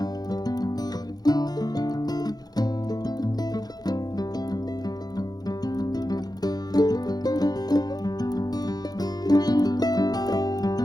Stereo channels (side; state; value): right; late; 0.19 ms